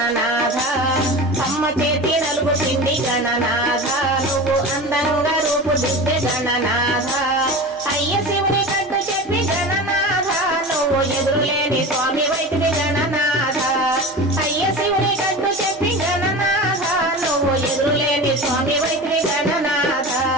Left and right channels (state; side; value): noise; right; hum, 30 dB below the sound